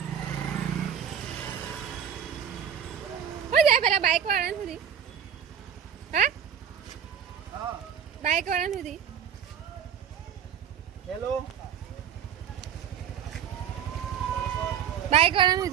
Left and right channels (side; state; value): left; quieter; 8.5 dB